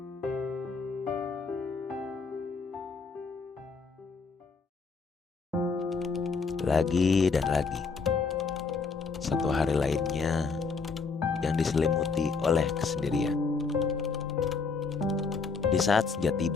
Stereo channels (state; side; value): quieter; right; 4.8 dB